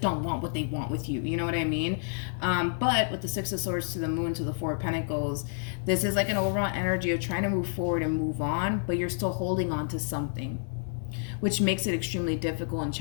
don't want what they want with you. You know what I mean? But with the Six of Swords to the Moon to the Four of Pentacles, this is like an overall energy of trying to move forward and move on, but you're still holding on to something, which makes it extremely difficult and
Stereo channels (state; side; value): silent; right; 58 dB below the other